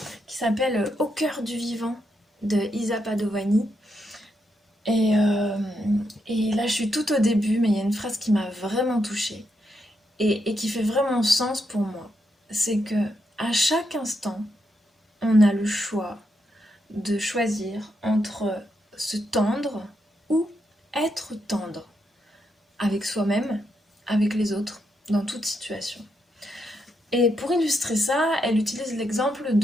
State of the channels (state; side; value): normal; both; correlation 0.81